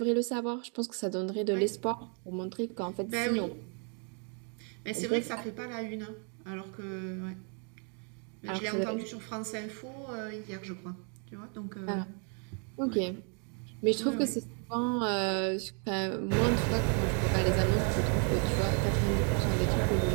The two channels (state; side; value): quieter; left; 39.9 dB